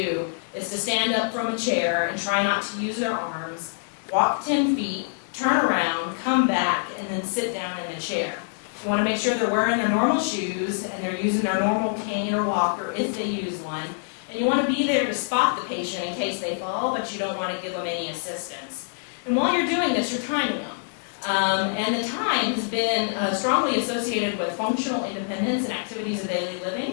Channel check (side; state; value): right; silent; digital silence